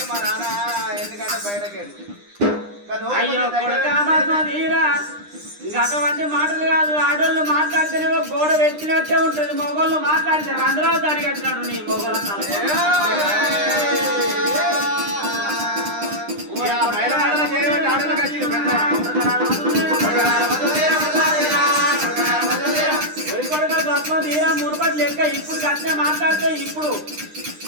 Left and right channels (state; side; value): late; left; 9.9 ms